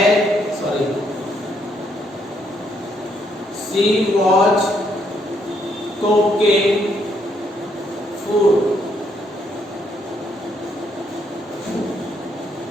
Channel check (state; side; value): normal; both; correlation 0.73